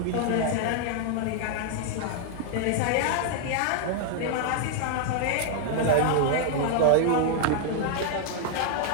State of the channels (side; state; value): both; different; correlation 0.00